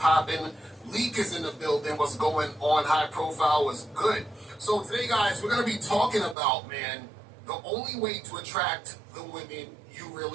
Leak is in the building. What's going on? High profile was good. So today, guys, we're going to be talking about, man, the only way to attract the women you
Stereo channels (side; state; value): left; drops out; at 6.4 s